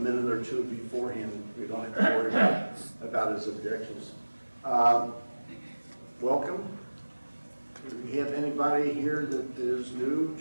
or two beforehand. We don't have to worry about his objections. Welcome. Do we have anybody here that is new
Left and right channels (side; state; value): both; inverted; correlation -1.00